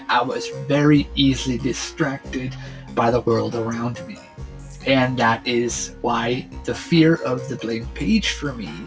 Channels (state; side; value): identical; both; correlation 1.00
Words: I was very easily distracted by the world around me. And that is why the fear of the blank page for me